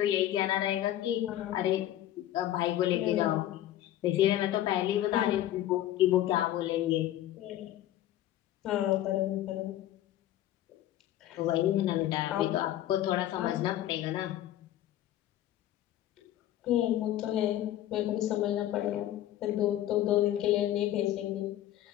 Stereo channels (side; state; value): right; quieter; 13.2 dB